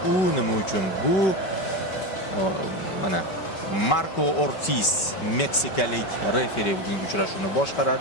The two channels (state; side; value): late; right; 5.2 ms